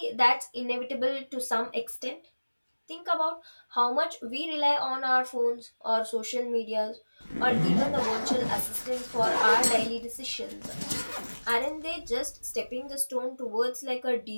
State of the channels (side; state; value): both; inverted; correlation -1.00